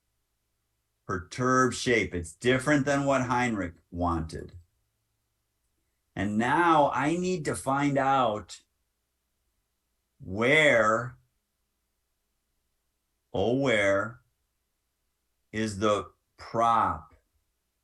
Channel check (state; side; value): identical; both; correlation 1.00